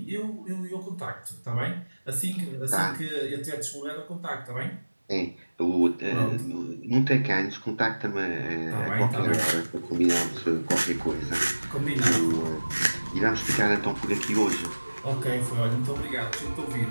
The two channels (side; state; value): both; inverted; correlation -1.00